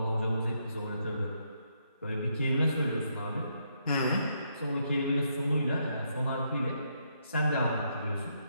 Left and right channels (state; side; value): inverted; both; correlation -0.77